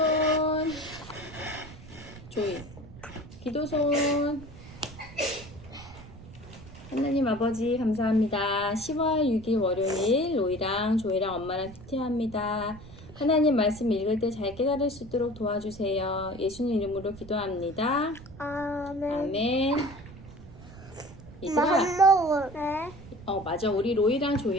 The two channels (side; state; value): right; noise; rumble, 17 dB below the sound